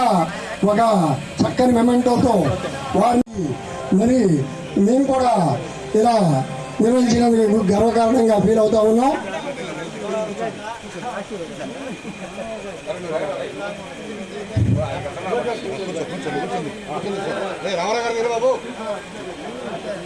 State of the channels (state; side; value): identical; both; correlation 1.00